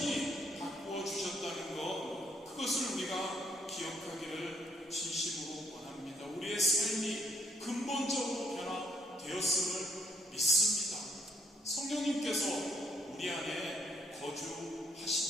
바꾸어 주셨다는 것, 그것을 우리가 기억하기를 진심으로 원합니다. 우리의 삶이 근본적으로 변화되었음을 믿습니다. 성령님께서 우리 안에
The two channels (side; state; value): both; normal; correlation 0.69